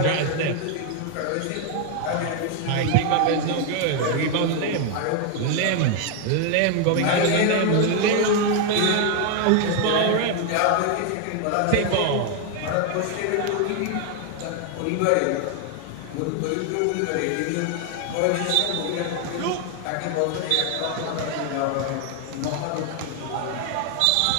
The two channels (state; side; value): different; both; correlation 0.01